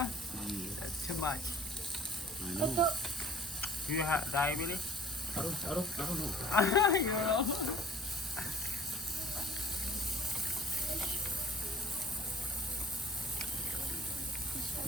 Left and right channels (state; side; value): normal; both; correlation 0.50